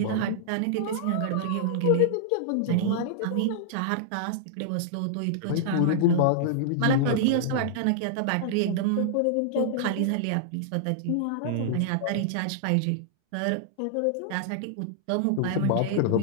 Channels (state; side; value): different; both; correlation -0.01